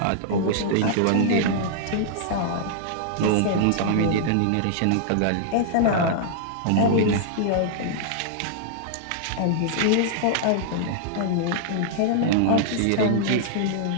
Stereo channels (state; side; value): different; both; correlation -0.01